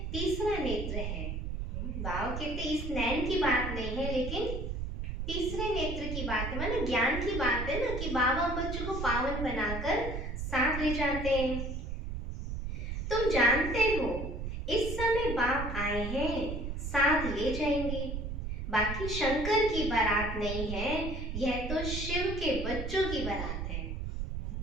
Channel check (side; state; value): right; noise; rumble, 4 dB below the sound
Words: तीसरा नेत्र है। बाबा कहते इस नैन की बात नहीं है, लेकिन तीसरे नेत्र की बात है, माने ज्ञान की बात है ना, कि बाबा बच्चों को पावन बनाकर साथ ले जाते हैं। तुम जानते हो इस समय बाप आए हैं, साथ ले जाएंगे। बाकी शंकर की बारात नहीं है, यह तो शिव के बच्चों की बारात है।